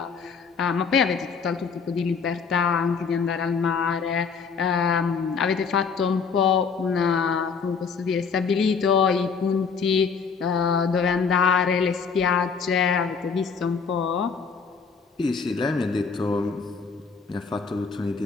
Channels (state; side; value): quieter; right; 5.6 dB